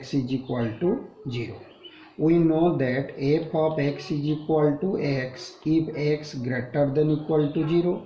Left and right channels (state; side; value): identical; both; correlation 1.00